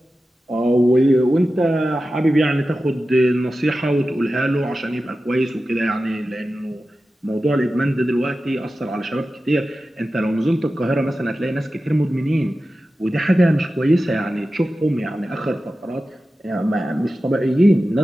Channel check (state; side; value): normal; both; correlation 0.94